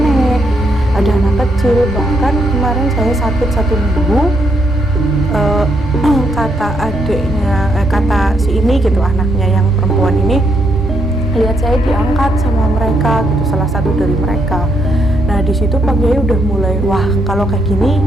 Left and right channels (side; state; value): both; normal; correlation 0.76